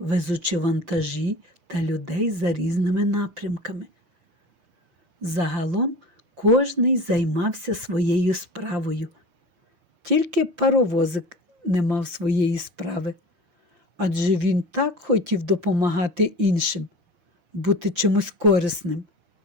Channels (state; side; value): late; left; 5.8 ms